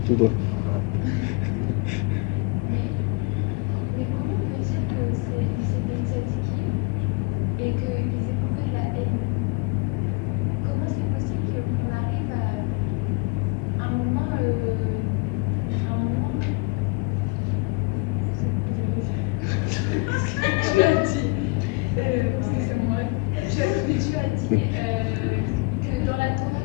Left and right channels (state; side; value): quieter; right; 28.0 dB